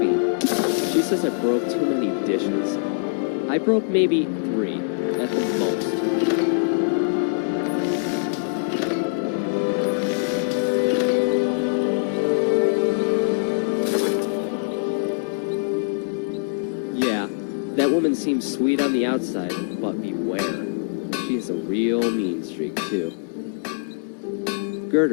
She says I broke too many dishes. I broke maybe 3, at the most. That woman seems sweet on the outside, but beware. She has a real mean streak, too.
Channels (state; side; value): silent; right; digital silence